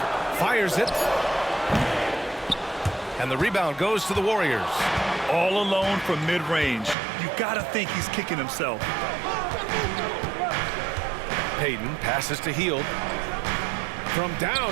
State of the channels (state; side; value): drops out; left; at 7.0 s